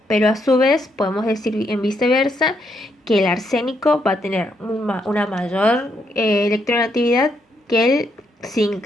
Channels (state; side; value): normal; both; correlation 0.76